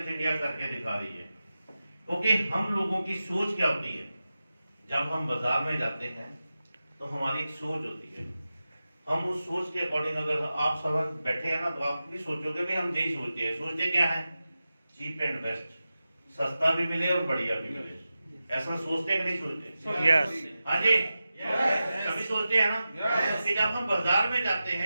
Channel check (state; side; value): inverted; both; correlation -0.93